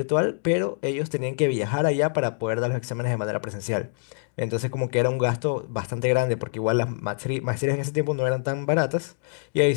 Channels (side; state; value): right; silent; digital silence